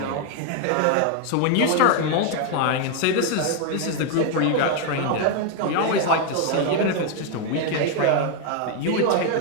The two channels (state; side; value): different; both; correlation 0.01